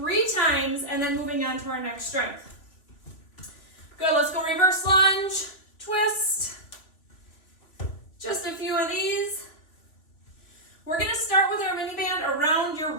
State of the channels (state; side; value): late; right; 2.9 ms